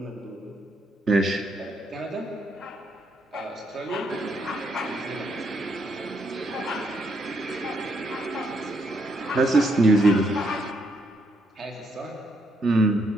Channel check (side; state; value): both; normal; correlation 0.75